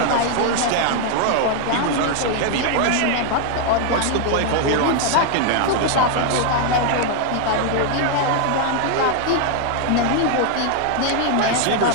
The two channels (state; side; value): different; both; correlation 0.00